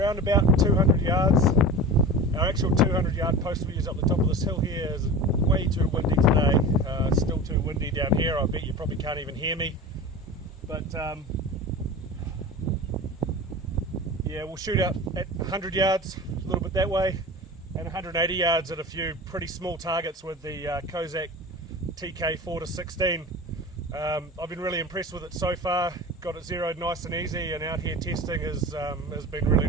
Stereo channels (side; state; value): both; normal; correlation 0.32